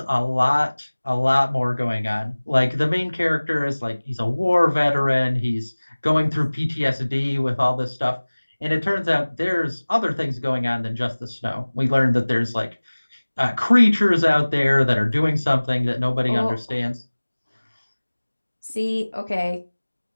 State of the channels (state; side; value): inverted; both; correlation -1.00